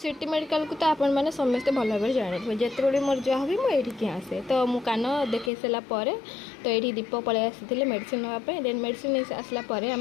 मेडिकल को तो आपण मैंने समस्ते भल भाव जाने जिते बड़े मोर जहाँ भी मुझे आसे तो मु कान देखे सारापर तो ये दीप पलि आसी मेडिसिन नापी देन मेडिसिन आसला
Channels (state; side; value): drops out; right; at 5.5 s